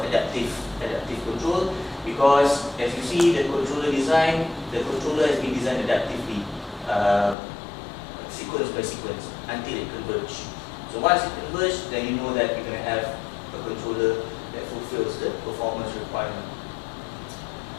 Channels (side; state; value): right; drops out; at 7.4 s